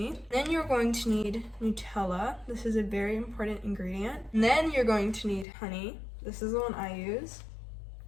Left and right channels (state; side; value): drops out; right; at 5.5 s